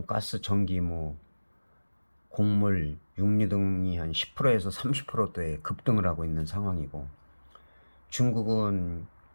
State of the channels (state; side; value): inverted; both; correlation -1.00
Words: 가스, 전기, 곡물, 육류 등이 한 10%에서 30%대 급등을 하고 있는 상황이고, 중국은